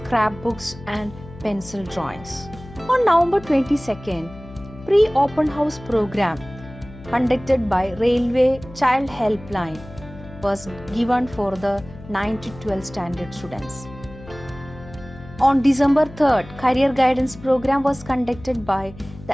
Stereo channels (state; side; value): noise; left; hum, 17 dB below the sound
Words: and pencil drawings. On November 22nd, pre-open house program conducted by Railway Child Helpline was given for the 9 to 12 standard students. On December 3rd, career guidance program was conducted by